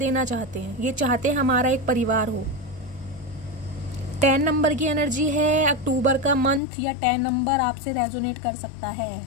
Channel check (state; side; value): drops out; right; at 6.6 s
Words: चाहते हैं, ये चाहते हैं हमारा एक परिवार हो। 10 नंबर की एनर्जी है, अक्टूबर का मंथ या 10 नंबर आपसे रेजोनेट कर सकता है।